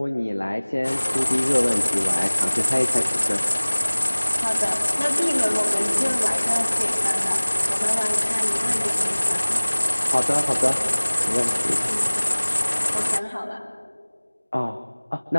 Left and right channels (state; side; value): inverted; both; correlation -1.00